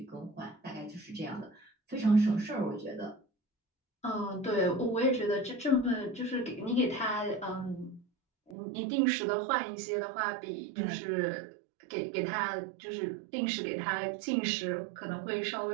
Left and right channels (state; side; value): drops out; left; at 8.6 s